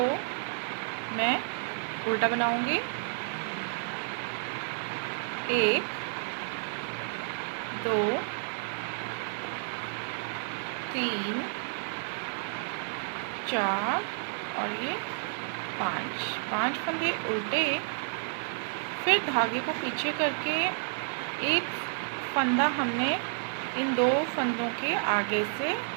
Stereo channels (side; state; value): left; silent; digital silence